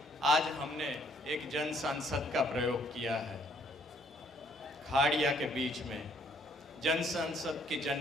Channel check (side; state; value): both; normal; correlation 0.65